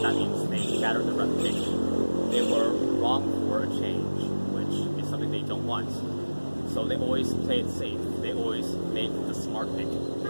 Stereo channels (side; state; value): both; inverted; correlation -1.00